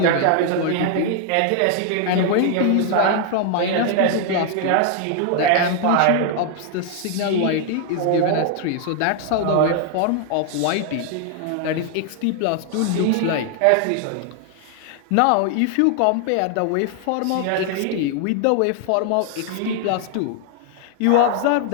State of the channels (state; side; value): different; both; correlation 0.00